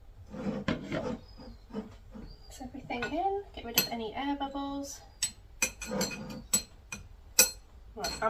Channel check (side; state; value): both; identical; correlation 1.00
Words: Mix everything in, get rid of any air bubbles. Right,